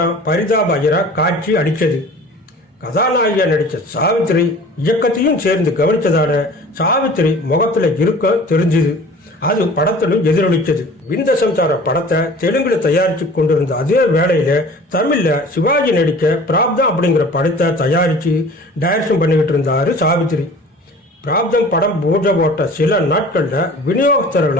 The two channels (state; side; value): normal; both; correlation 0.44